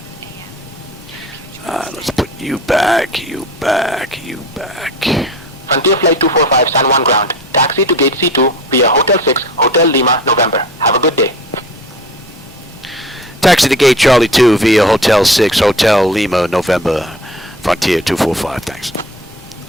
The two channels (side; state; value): both; normal; correlation 0.39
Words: a.m. Let's put you back, you back, you back. Frontier Flight 245 San Juan ground. Taxi to gate C2 via Hotel 6, Hotel Lima, November. Have a good day. Taxi to gate Charlie 2 via Hotel 6, Hotel Lima, November. Frontier 245, thanks.